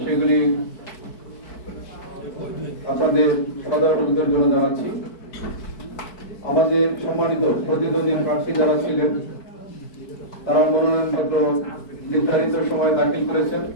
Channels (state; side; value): late; right; 4.6 ms